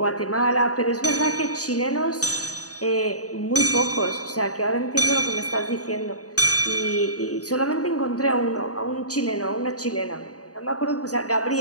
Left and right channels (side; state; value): right; late; 0.67 ms